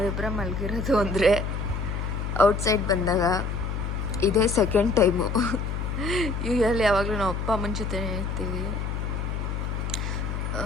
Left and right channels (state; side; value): noise; left; hum, 3 dB below the sound